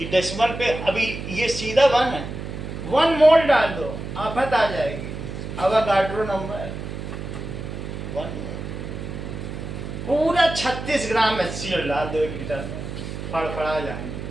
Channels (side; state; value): right; noise; hum, 7 dB below the sound